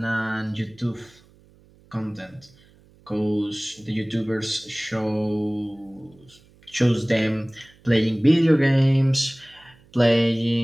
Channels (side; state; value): right; noise; hum, 29 dB below the sound